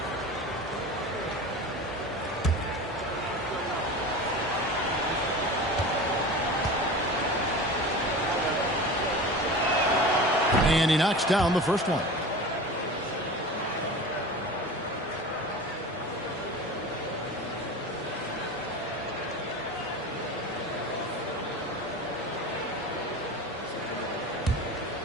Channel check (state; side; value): normal; both; correlation 0.33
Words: And he knocks down the first one.